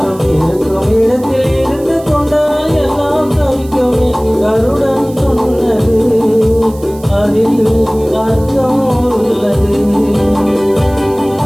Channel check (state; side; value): noise; right; hiss, 22 dB below the sound